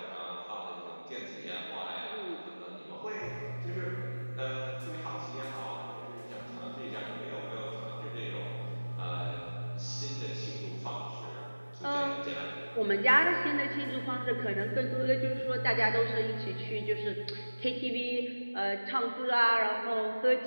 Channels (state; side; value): inverted; both; correlation -1.00